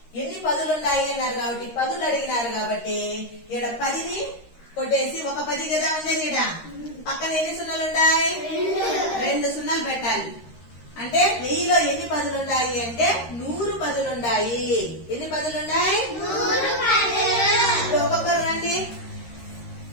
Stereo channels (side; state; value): right; late; 13 ms